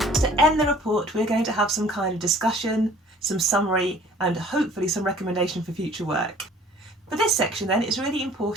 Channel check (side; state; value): both; normal; correlation 0.52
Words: To end the report, we're going to have some kind of discussion, some summary, and hopefully some recommendation for future work. For this section then, it's really